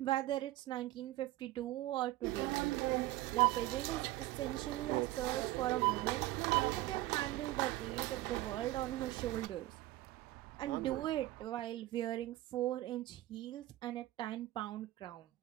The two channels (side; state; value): left; quieter; 16.6 dB